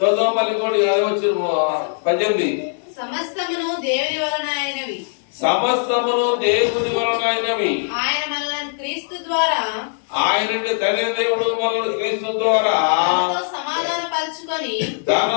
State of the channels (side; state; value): right; silent; digital silence